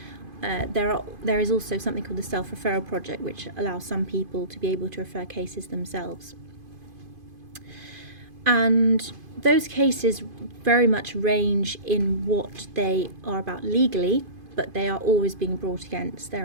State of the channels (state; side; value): late; left; 2.5 ms